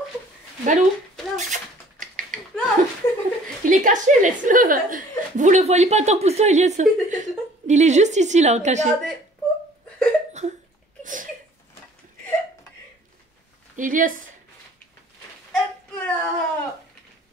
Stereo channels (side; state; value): both; normal; correlation 0.53